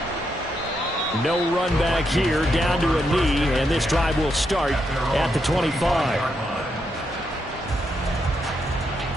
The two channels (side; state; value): both; normal; correlation 0.81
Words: No run back here, down to a knee, and this drive will start at the 25.